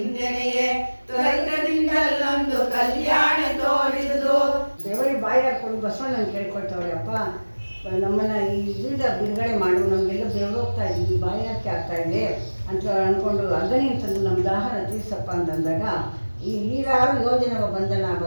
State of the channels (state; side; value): inverted; both; correlation -1.00